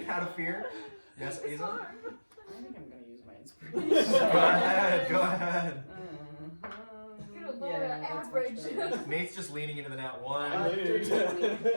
out of fear. Yes, It's Aza? hard. I think I'm gonna use my Go inspiration. ahead, go ahead. You're lower average. Nate's just leaning into the nat 1.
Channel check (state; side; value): inverted; both; correlation -1.00